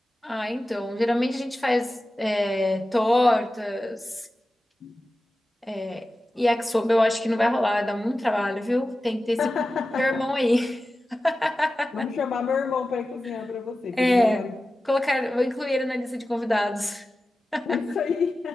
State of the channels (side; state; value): both; normal; correlation 0.94